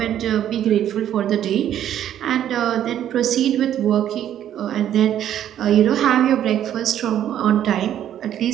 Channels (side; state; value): left; quieter; 10.8 dB